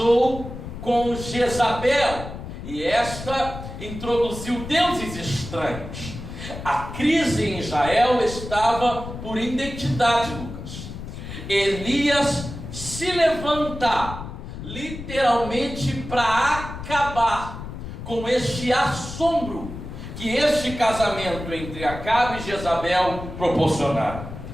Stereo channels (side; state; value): left; noise; rumble, 10 dB below the sound